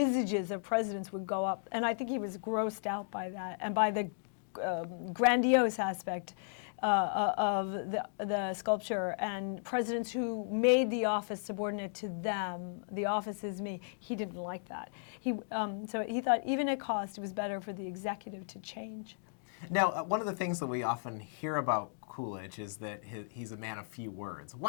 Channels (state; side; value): silent; right; digital silence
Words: of presidents would go up. And I think he was grossed out by that and by the grandiose aspect of the sculpture, and presidents who made the office subordinate to them. The office is me. He didn't like that. So he thought even at cost, it was better for the executive to change. Now, one of the things that we often hear about Coolidge is that he's a man of few words.